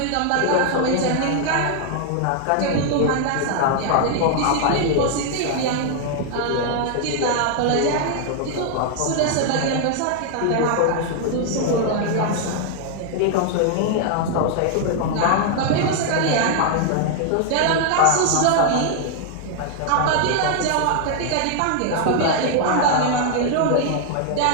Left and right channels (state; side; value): different; both; correlation 0.00